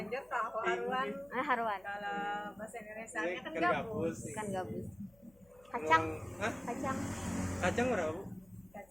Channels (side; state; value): left; noise; hum, 29 dB below the sound